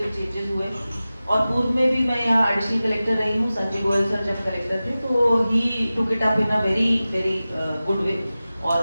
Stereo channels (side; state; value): both; inverted; correlation -0.96